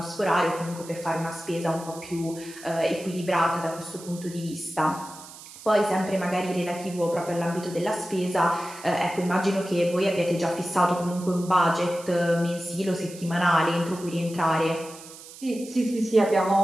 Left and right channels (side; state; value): right; noise; hiss, 17 dB below the sound